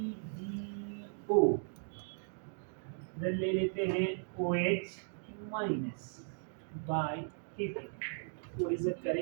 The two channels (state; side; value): silent; left; digital silence